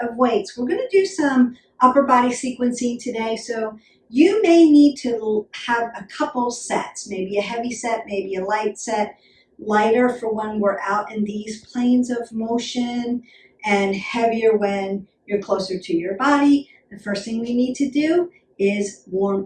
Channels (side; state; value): both; identical; correlation 1.00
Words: of weights. We're going to do some upper body sequencing today. So you may need to have a couple sets, maybe a heavy set, maybe a light set. Lighter for when we're out in these planes of motion, and heavier when you're closer to your body. The first thing we need to do is